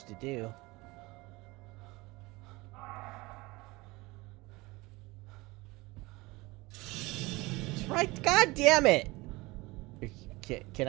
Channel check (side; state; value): left; quieter; 22.3 dB